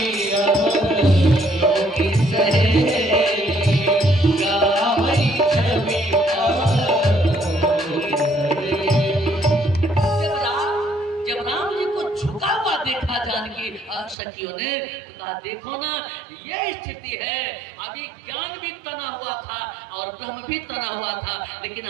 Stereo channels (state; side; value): drops out; left; at 14.2 s